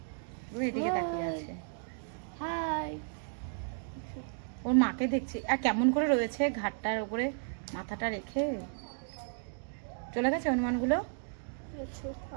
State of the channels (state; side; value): silent; left; digital silence